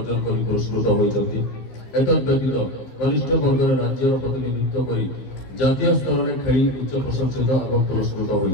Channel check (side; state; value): right; late; 15 ms